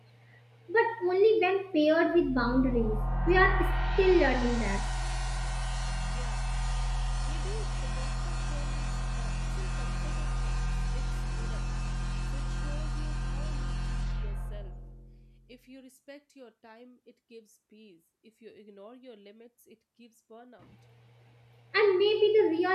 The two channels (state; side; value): identical; both; correlation 1.00